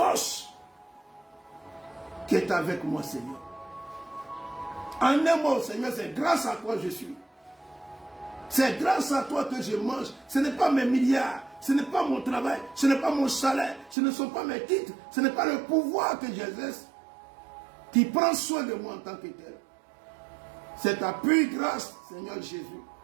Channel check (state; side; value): drops out; left; at 14.0 s